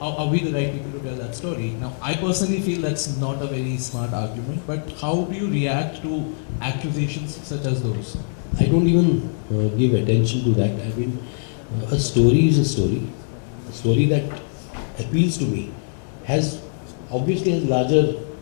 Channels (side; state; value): right; silent; 64 dB below the other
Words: we the right people to tell that story? Now, I personally feel that's not a very smart argument, but how do you react to accusations such as those? I don't even give attention to that. I mean, a story is a story. A story that appeals to me obviously has larger,